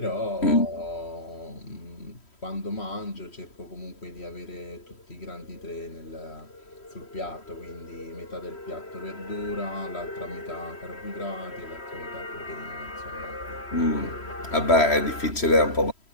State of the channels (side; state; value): right; late; 3.1 ms